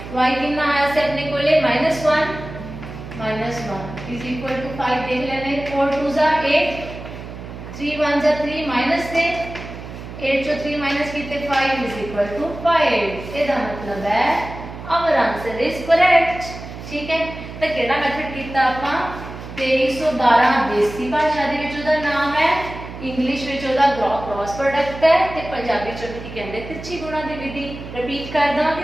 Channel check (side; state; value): right; noise; hum, 12 dB below the sound